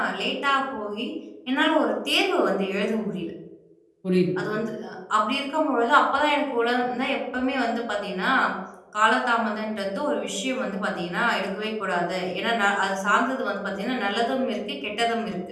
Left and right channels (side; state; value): both; identical; correlation 1.00